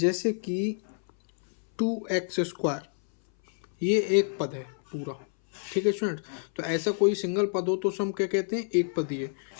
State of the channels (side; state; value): right; silent; 59 dB below the other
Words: कि 2x², ये एक पद है पूरा। ठीक है स्टूडेंट, तो ऐसा कोई सिंगल पद हो तो उसे हम क्या कहते हैं? एक पदीय।